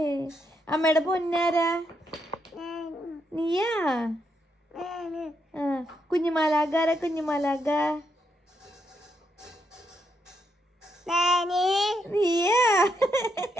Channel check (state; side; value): normal; both; correlation 0.79